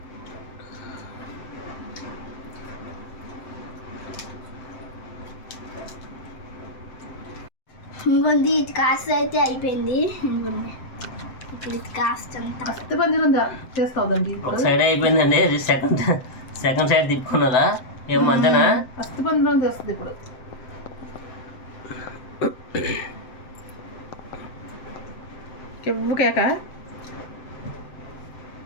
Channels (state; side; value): late; right; 7.7 ms